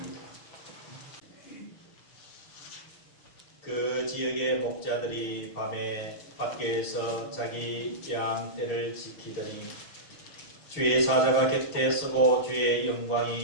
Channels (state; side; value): late; right; 6.2 ms